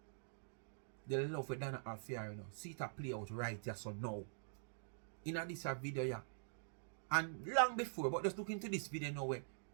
The love that Donna have for her, you know. See it a play out right here, so now. In this video, yeah. And long before, but just look into this video now where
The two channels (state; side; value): silent; left; digital silence